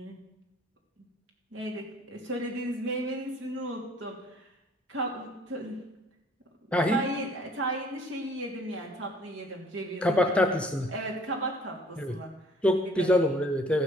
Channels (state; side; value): normal; both; correlation 0.56